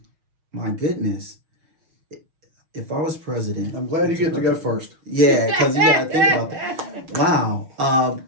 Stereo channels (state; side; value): late; left; 6.3 ms